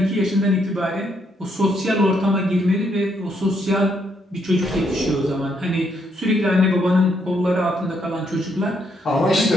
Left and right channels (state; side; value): normal; both; correlation 0.74